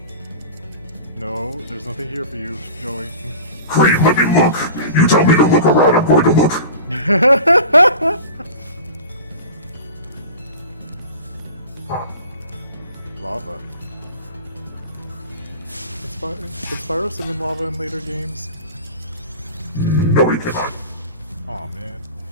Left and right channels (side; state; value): both; inverted; correlation -0.38